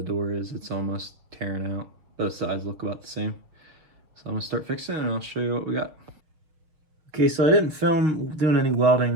door is. It's almost tearing out. Both sides look about the same. So I'm gonna start fixing it and I'll show you what we got. Okay, so I didn't film doing any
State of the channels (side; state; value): left; late; 6.6 ms